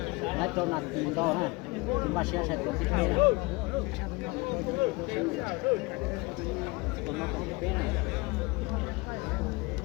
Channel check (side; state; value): right; quieter; 25.3 dB